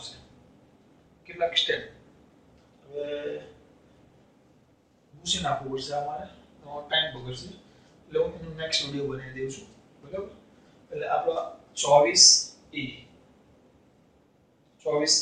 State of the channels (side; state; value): both; identical; correlation 1.00